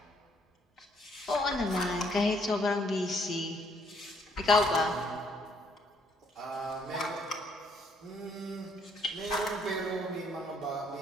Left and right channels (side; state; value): both; normal; correlation 0.68